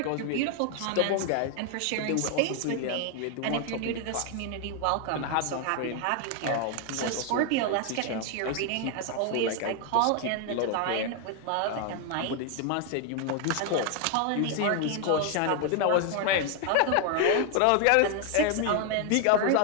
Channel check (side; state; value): both; different; correlation 0.01